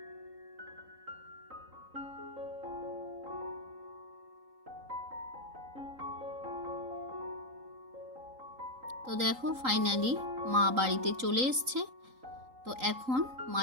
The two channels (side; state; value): left; late; 3.8 ms